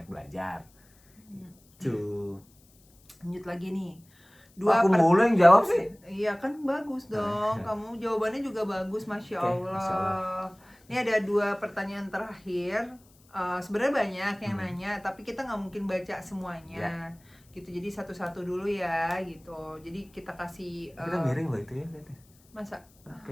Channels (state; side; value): noise; left; hiss, 30 dB below the sound